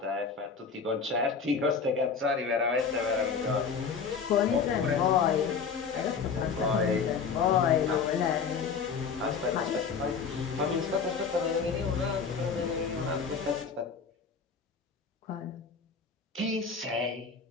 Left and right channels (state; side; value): quieter; right; 5.7 dB